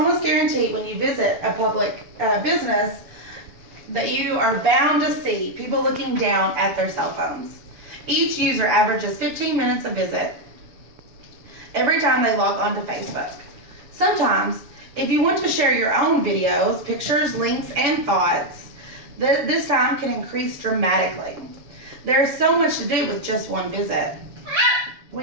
guarantee when you visit a public business that you are bound to see people looking down at their cell phones. Each user averages 15 minutes a visit every time they log onto Facebook. Sometimes, if you want to share your own videos, pictures, links, and thoughts, this time can increase dramatically. There's so much to do with just one visit.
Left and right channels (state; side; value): late; left; 7.1 ms